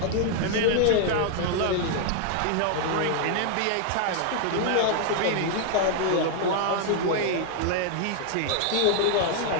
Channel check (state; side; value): different; both; correlation 0.00